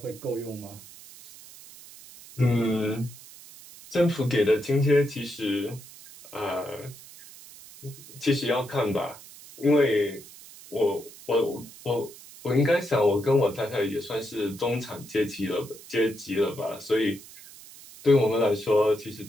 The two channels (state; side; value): noise; right; hiss, 19 dB below the sound